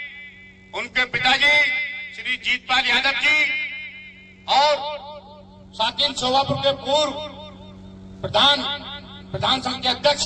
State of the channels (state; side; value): identical; both; correlation 1.00